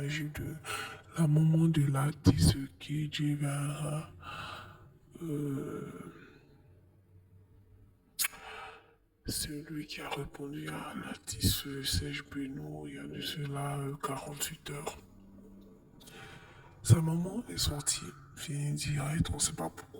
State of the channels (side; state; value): both; identical; correlation 1.00